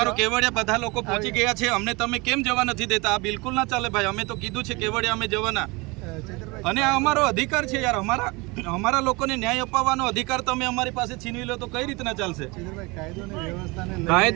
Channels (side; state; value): left; quieter; 25.6 dB